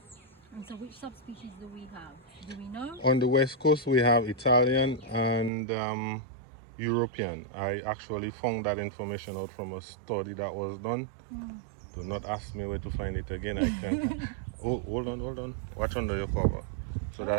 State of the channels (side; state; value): left; drops out; at 5.5 s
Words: And so which subspecies do we have? Do we know? On the west coast, we have Italian and European. I actually found that information out from a study that was done. Do not ask me where to find it again. I can. Oh, hold on. Watch under your cover. So